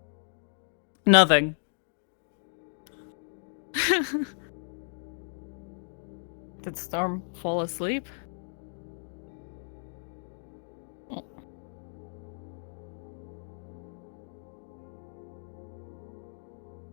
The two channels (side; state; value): right; silent; digital silence